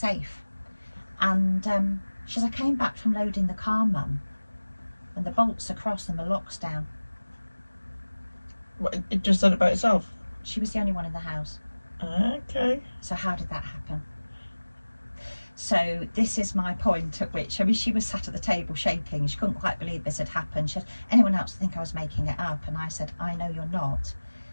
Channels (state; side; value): inverted; both; correlation -1.00